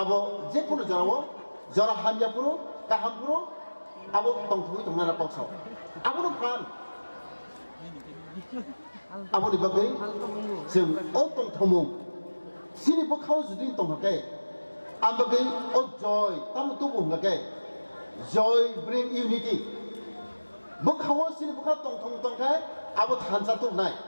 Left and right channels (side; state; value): both; inverted; correlation -1.00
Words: je kono jarawo jara hamya puro kaham puro abo tong thong na pok sawo abo no phan abo ni bagai se o tong thong sini bo khaw judin tong hakai ambagai o joy tam tu bu hakai joy bring unity bukhawo sini bukha tong thong tong khai abo thansa tu nai